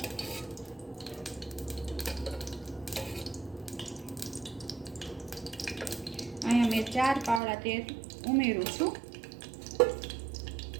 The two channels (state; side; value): drops out; left; at 7.4 s